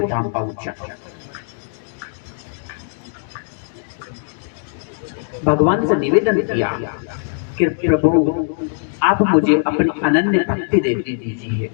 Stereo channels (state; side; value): silent; right; digital silence